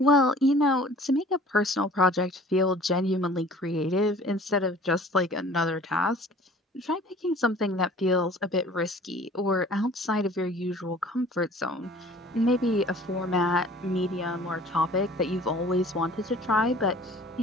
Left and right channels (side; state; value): both; normal; correlation 0.48